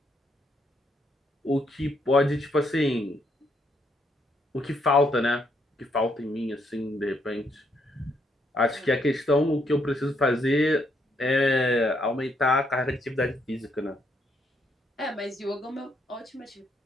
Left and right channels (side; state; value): both; normal; correlation 0.74